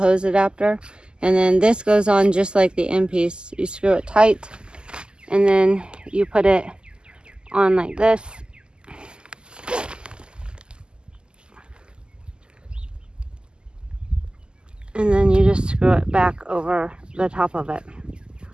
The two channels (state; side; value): late; left; 0.048 ms